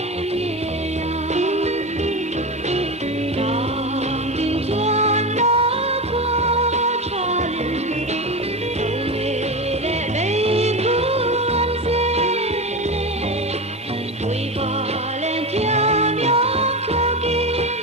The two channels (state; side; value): normal; both; correlation 0.21